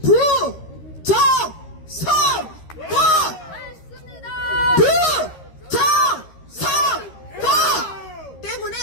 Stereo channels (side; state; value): right; late; 13 ms